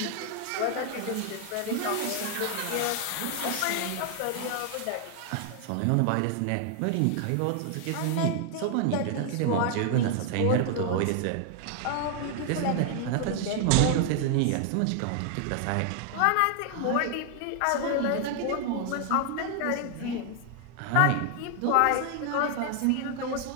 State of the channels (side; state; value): both; different; correlation 0.00